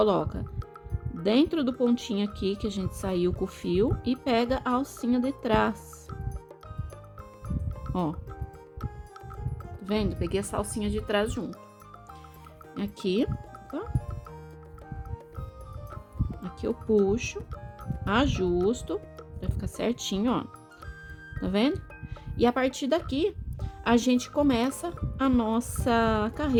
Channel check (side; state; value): both; identical; correlation 1.00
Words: dentro do pontinho aqui que a gente saiu com o fio e pega a alcinha de trás. Ó. Tá vendo? Peguei essa alcinha de trás junto. Aqui, opa. Aqui eu puxo, ajusto, vai ficar certinho, ó. Tá vendo? E a partir daqui, a gente começa a nossa